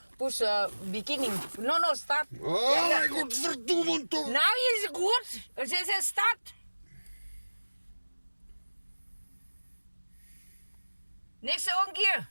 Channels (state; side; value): inverted; both; correlation -1.00